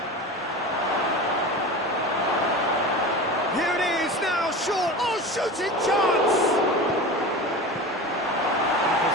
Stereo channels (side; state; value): both; normal; correlation 0.31